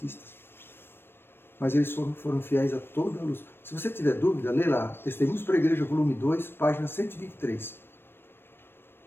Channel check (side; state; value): right; late; 0.10 ms